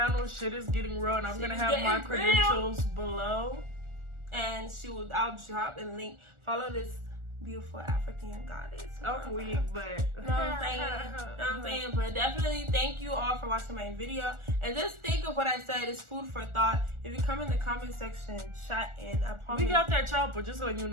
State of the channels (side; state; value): left; late; 1.4 ms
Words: Shit Is Getting Real, and I'm gonna have my credentials below. And I'll drop a link. Follow this beautiful African goddess. I'm weak, but you know what I'm saying? But definitely thank you all for watching my video. And just think of what I said. It's food for thought. If you come in the comment section, shot in. I promise. We got that chopper, just so you